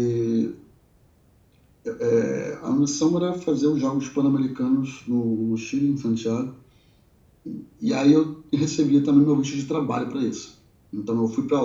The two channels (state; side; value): identical; both; correlation 1.00